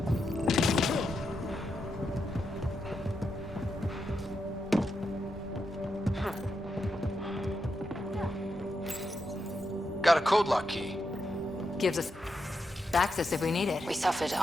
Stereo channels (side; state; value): both; normal; correlation 0.85